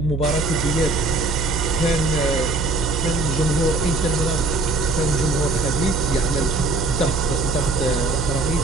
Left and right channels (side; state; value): right; noise; hum, 3 dB below the sound